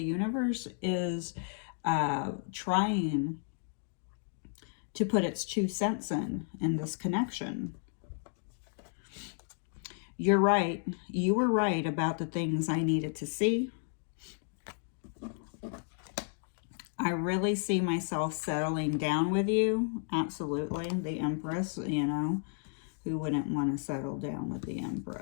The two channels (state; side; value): silent; right; 56 dB below the other